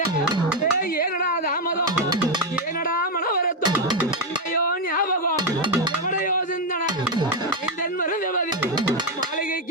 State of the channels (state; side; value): normal; both; correlation 0.05